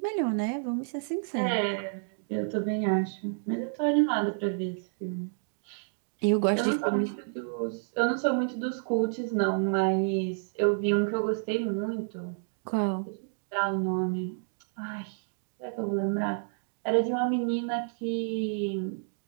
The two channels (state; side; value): silent; left; digital silence